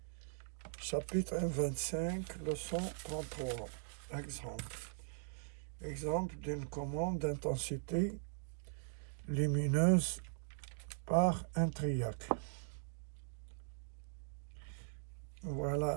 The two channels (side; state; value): left; silent; digital silence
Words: chapitre 25, leçon 33. Exemple d'une commande d'intensité lumineuse par un triac. Voilà